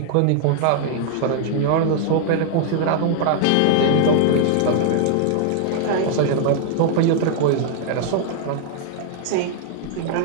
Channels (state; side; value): different; both; correlation 0.00